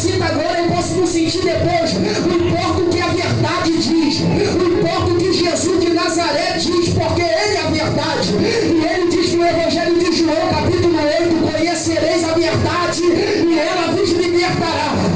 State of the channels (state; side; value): identical; both; correlation 1.00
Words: agora eu posso não sentir depois. Não importa o que a verdade diz. Não importa o que Jesus de Nazaré diz, porque ele é a verdade. E ele diz no Evangelho de João, capítulo 8, conhecereis a verdade e ela vos libertará.